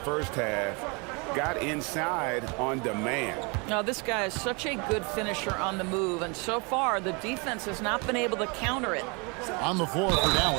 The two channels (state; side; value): quieter; left; 31.3 dB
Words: first half. Got inside on demand. Now, this guy is such a good finisher on the move, and so far the defense has not been able to counter it. On the floor for